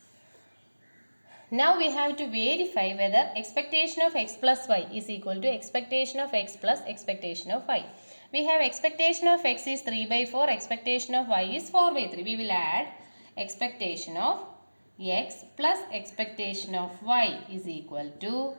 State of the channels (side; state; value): both; inverted; correlation -1.00